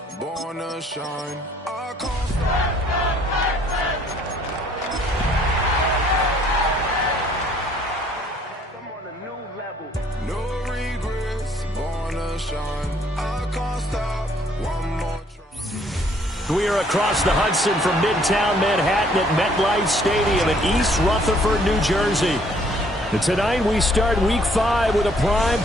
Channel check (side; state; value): both; normal; correlation 0.62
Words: born to shine. I can't stop. I'm on a new level. No regrets, born to shine. I can't stop. One more try. We are across the Hudson from Midtown Manhattan at MetLife Stadium in East Rutherford, New Jersey. And tonight we start Week 5 with a